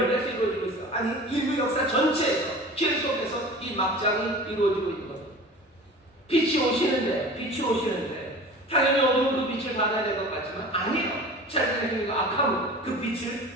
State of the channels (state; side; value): normal; both; correlation 0.39